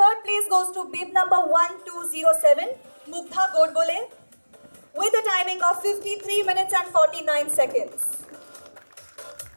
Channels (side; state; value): both; inverted; correlation -1.00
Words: place goes to bib number 1207, Mugdha Godbole, with a timing of 53 minutes and 49 seconds.